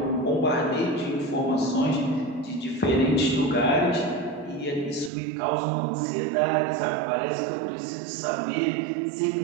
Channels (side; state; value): left; drops out; at 5.1 s